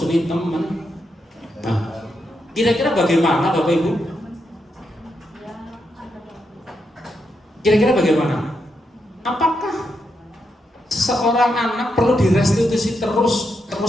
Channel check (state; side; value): normal; both; correlation 0.83